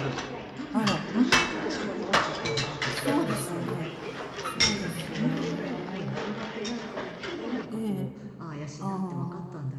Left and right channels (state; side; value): identical; both; correlation 1.00